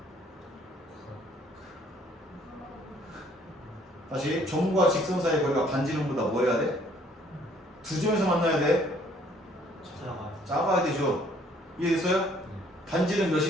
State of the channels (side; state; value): both; normal; correlation 0.61